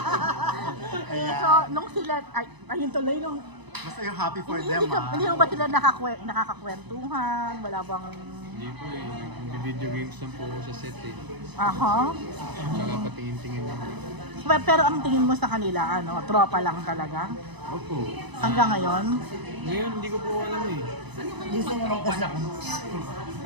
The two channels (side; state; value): left; late; 1.0 ms